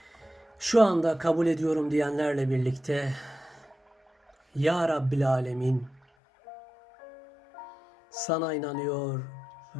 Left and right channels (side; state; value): right; drops out; at 6.0 s